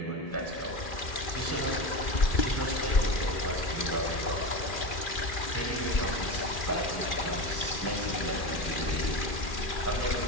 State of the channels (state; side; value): late; right; 2.4 ms